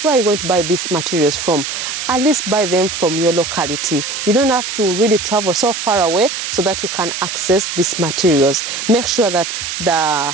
where are you going to buy these materials from? At least buy them from your locality. You don't have to really travel so far away so that you can access these materials. Make sure that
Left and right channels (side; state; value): right; noise; hiss, 5 dB below the sound